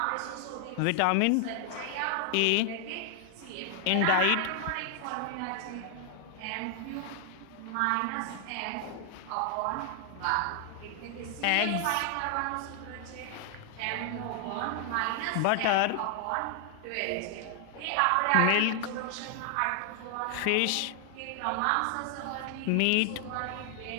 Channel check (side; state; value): both; different; correlation 0.00